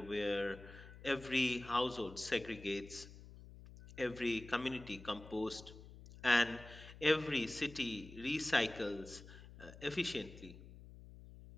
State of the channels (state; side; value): noise; left; hum, 17 dB below the sound